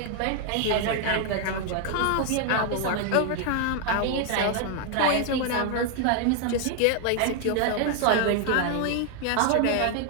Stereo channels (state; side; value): different; both; correlation 0.00